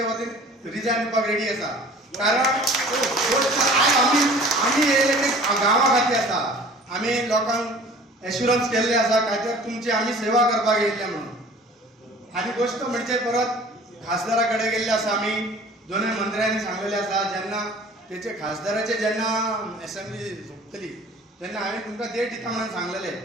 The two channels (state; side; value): normal; both; correlation 0.47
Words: वतीन रिजायन दिवपाक रेडी आसा. कारण आमी येयले ते गांवा खातीर आसा. आमी लोकांक एश्युरन्स केल्ले आसा काय तर तुमची आमी सेवा करपाक येयल्ले म्हणून. आनी गोश्ट म्हणजे परत खासदारा कडेन गेल्ले आसा. आमी दोनूय मंत्र्यांनी सांगलेले आसा जेन्ना तेचे खासदाराचे जेन्ना असेंब्ली झुकतली तेन्ना हांवें तुमकां डेट दिता म्हणून सांगलेले.